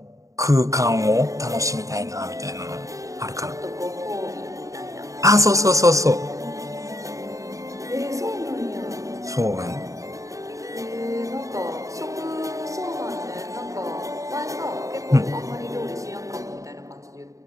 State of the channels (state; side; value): late; left; 0.16 ms